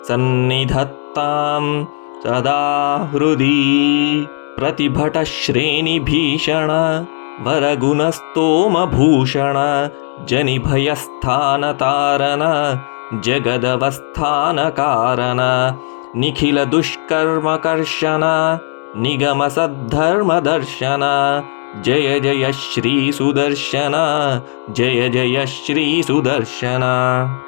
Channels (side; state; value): right; silent; digital silence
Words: ಸನ್ನಿಧತ್ತಾಂ ಸದಾ ಹೃದಿ. ಪ್ರತಿಭಟ ಶ್ರೇಣಿಭೀಷಣ ವರಗುಣಸ್ತೋಮಭೂಷಣ ಜನಿಭಯಸ್ಥಾನತಾರನ ಜಗದವಸ್ಥಾನ ಕಾರಣ ನಿಖಿಲ ದುಷ್ಕರ್ಮಕರ್ಷಣ ನಿಗಮ ಸದ್ಧರ್ಮದರ್ಶನ ಜಯ ಜಯ ಶ್ರೀ ಸುದರ್ಶನ ಜಯ ಜಯ ಶ್ರೀ ಸುದರ್ಶನ.